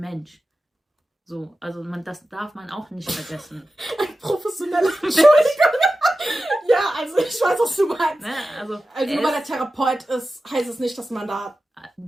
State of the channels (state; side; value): normal; both; correlation 0.93